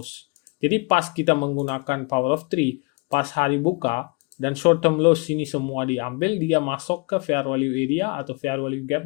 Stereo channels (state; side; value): quieter; right; 31.5 dB